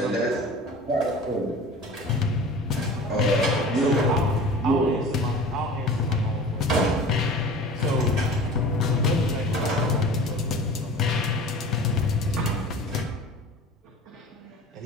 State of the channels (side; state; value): both; normal; correlation 0.39